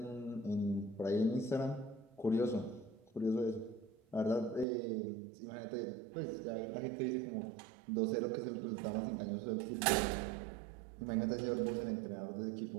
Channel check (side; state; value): left; drops out; at 4.7 s